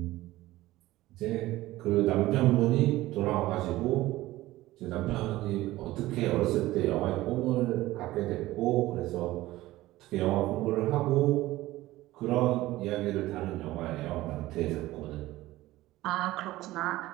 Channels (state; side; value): quieter; left; 17.1 dB